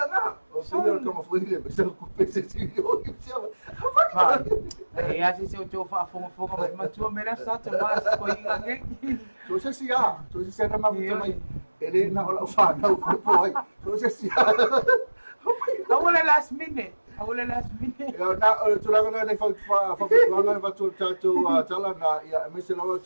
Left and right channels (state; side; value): inverted; both; correlation -1.00